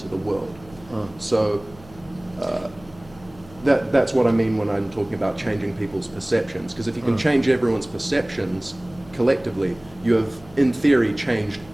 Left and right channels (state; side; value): noise; left; hum, 22 dB below the sound